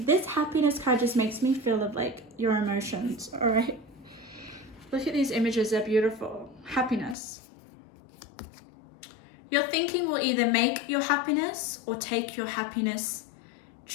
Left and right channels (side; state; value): right; drops out; at 7.2 s